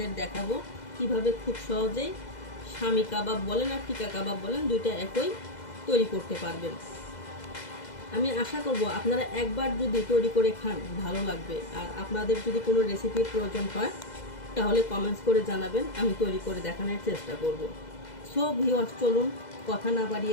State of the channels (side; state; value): right; late; 2.0 ms